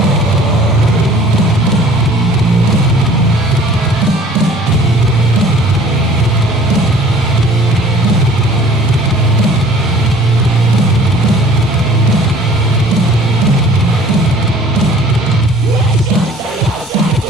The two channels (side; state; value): both; normal; correlation 0.51